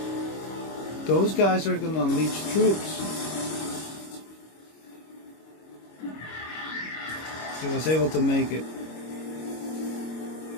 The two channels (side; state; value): right; late; 25 ms